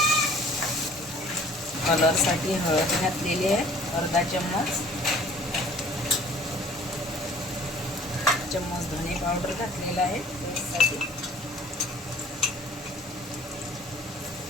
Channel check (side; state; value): both; normal; correlation 0.52